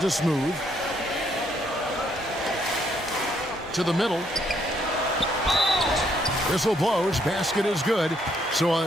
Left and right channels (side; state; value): both; normal; correlation 0.70